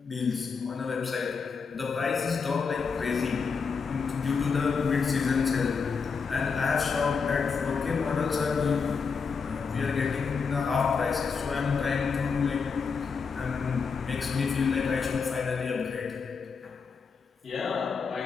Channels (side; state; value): right; quieter; 5.5 dB